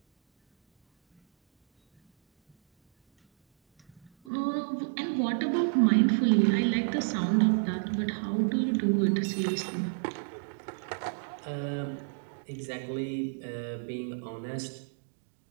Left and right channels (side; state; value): left; drops out; at 4.1 s